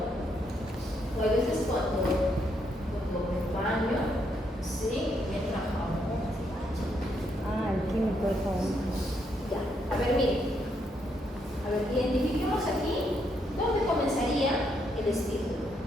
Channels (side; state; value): both; normal; correlation 0.76